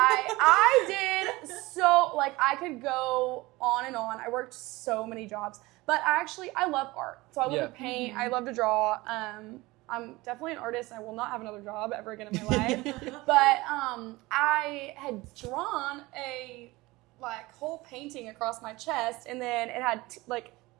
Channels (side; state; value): left; quieter; 21.0 dB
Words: did so, like, I could go on and on. I worked so many jobs, but I love art. So I love Yeah. to paint. I love to draw. I'm definitely an artist. I will not have another job ever again in my life. But I had drawn a whole painting across my chest, and then it had